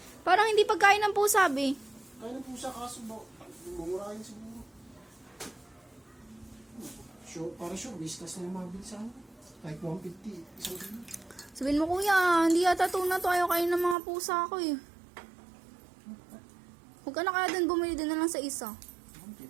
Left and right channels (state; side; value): drops out; left; at 14.0 s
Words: Parang hindi pagkain ng pusa, be. Kaya ng pusa kaso ba, mumurahin siguro. Sure, para sure, whiskas na yung mabili sa akin. Like 150, isang kilo. Sabihin mo, kuya, hindi yata tuna to. Ayaw kain ng mga pusa ko eh. Huwag ka na kaya dun, bumili din na lang sa isa.